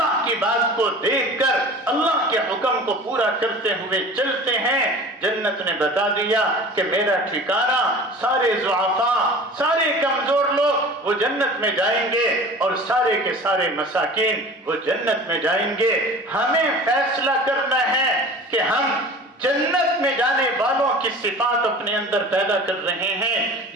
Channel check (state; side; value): normal; both; correlation 0.40